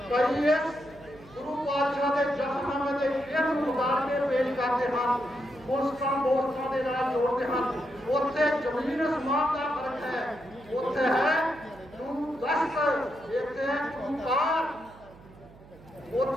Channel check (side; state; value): right; noise; hum, 22 dB below the sound